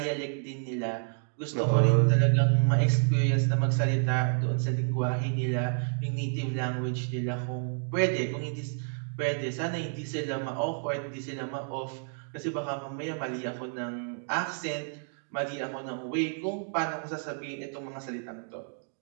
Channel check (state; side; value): silent; left; 58 dB below the other